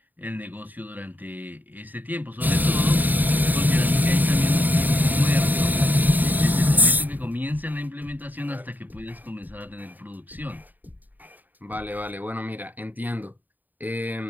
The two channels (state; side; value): late; left; 0.086 ms